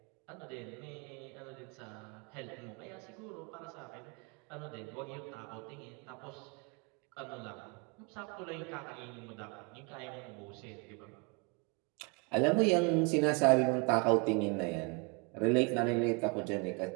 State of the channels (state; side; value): quieter; left; 32.4 dB